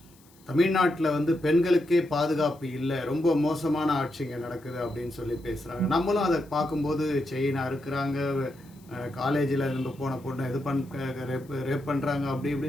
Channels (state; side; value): noise; left; hiss, 29 dB below the sound